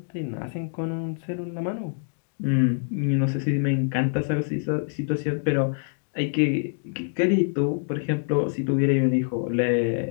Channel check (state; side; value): silent; right; digital silence